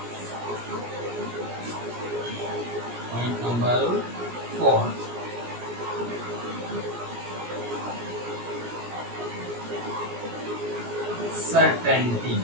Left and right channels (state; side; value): late; left; 17 ms